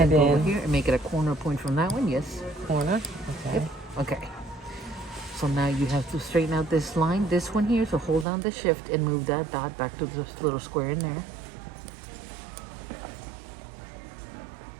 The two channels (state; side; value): drops out; left; at 8.2 s